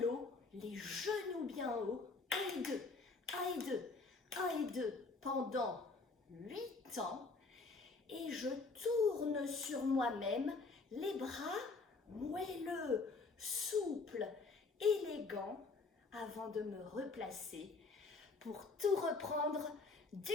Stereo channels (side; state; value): right; quieter; 4.0 dB